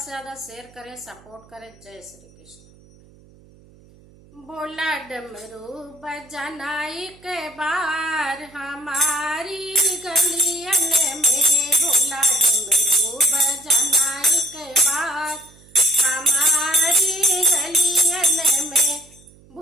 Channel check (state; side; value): noise; right; hum, 26 dB below the sound